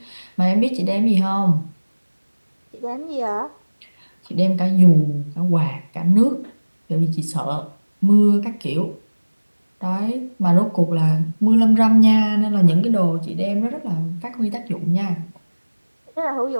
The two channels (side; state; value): both; inverted; correlation -1.00